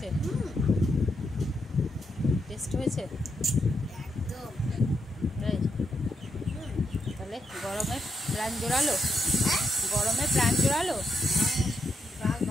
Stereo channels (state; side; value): normal; both; correlation 0.81